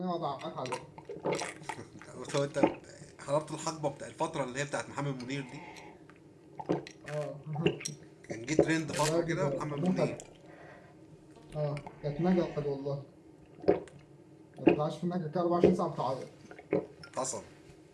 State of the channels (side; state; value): both; identical; correlation 1.00